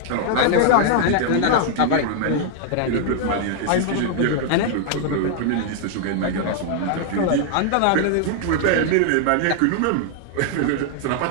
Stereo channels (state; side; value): different; both; correlation 0.00